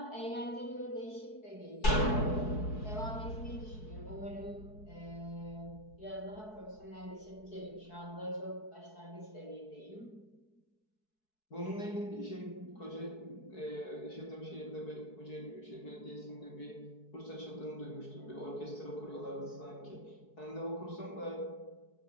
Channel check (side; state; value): right; late; 4.6 ms